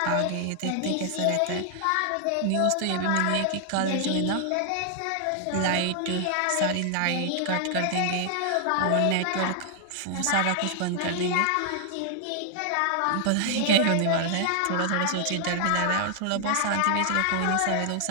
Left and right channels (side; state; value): both; different; correlation 0.00